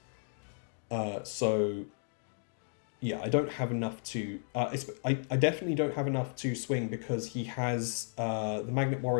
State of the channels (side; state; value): right; silent; digital silence